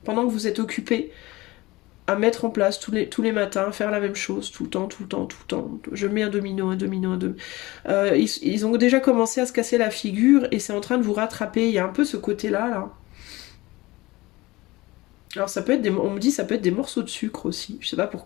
Pendant que vous êtes occupé à mettre en place tous les matins, faire la même chose, tout le temps, tout le temps, tout le temps. Je mets un domino, un domino, un domino. Ils ont déjà commencé à se casser la figure et c'est en train de vous rattraper. Il y a un peu ce côté-là, là. Alors ça peut être on me dit ça peut être des morceaux de sucre aussi, je sais pas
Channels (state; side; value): quieter; right; 20.5 dB